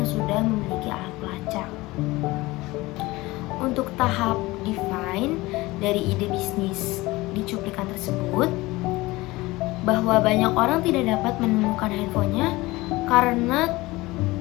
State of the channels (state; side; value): quieter; right; 20.5 dB